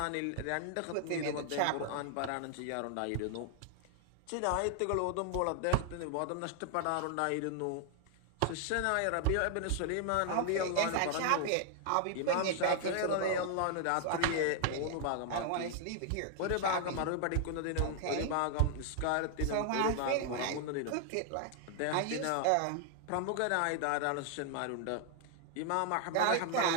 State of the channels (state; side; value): different; both; correlation 0.00